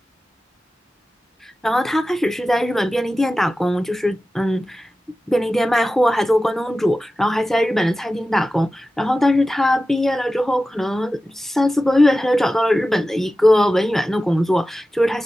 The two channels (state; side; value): normal; both; correlation 0.94